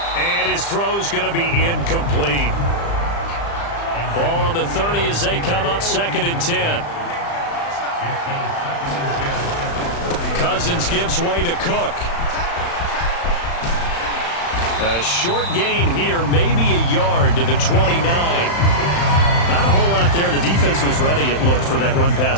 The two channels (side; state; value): right; late; 35 ms